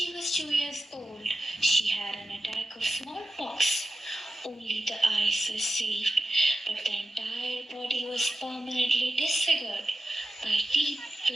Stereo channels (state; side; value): normal; both; correlation 0.92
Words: was 2 years old, she had an attack of smallpox. Only the eyes were saved, but the entire body was permanently disfigured by deep